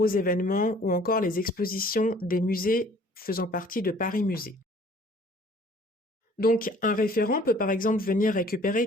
événements ou encore les expositions des musées faisant partie de Paris Musée. Donc un référent peut par exemple venir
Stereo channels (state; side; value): normal; both; correlation 0.54